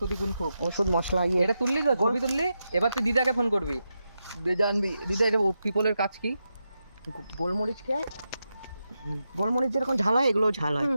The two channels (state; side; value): inverted; both; correlation -0.88